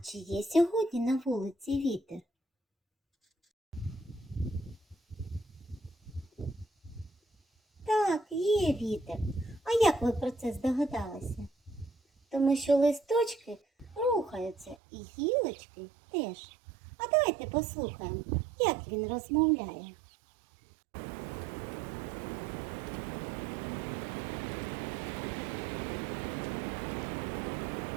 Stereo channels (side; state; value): left; drops out; at 14.8 s